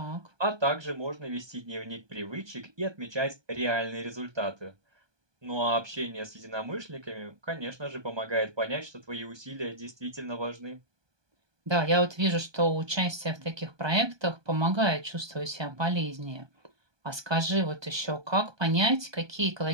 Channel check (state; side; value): late; left; 1.2 ms